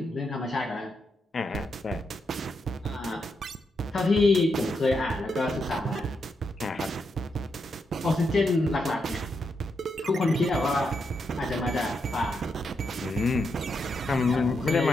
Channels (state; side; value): normal; both; correlation 0.82